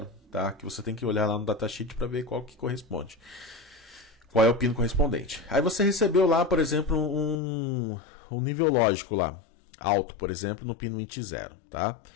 tá? Que você tem que olhar lá no datasheet para ver qual que corresponde. Qual é o pino correspondente. Aí você recebeu lá, por exemplo, um nível lógico lá, alto, por exemplo, no pino int0, tá?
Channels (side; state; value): right; drops out; at 7.4 s